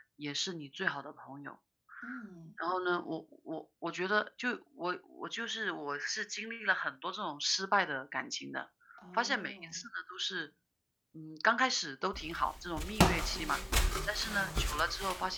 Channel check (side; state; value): both; identical; correlation 1.00